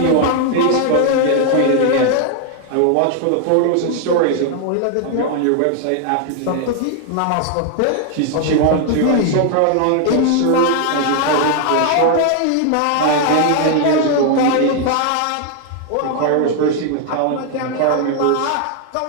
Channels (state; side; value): different; both; correlation 0.00